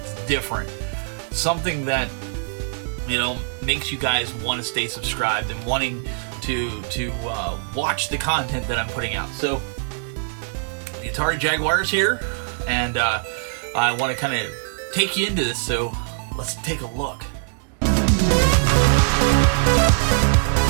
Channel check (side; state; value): left; silent; digital silence